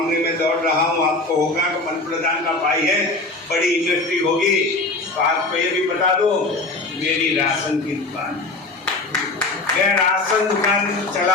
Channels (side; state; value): right; quieter; 3.1 dB